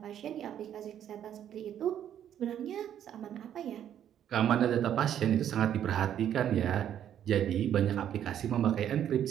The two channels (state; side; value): quieter; left; 10.1 dB